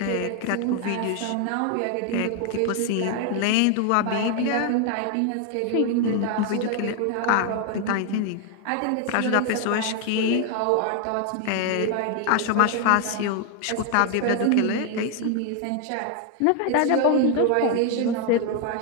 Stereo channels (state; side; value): different; both; correlation 0.00